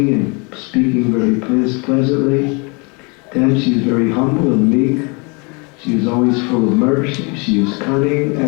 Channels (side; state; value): right; quieter; 31.3 dB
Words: and speaking very pleasantly. 10, she is very humble and meek. She is always full of mercy. She is cunning,